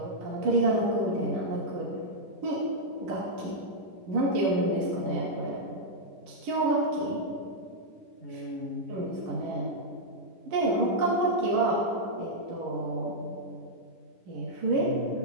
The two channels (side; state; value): left; late; 11 ms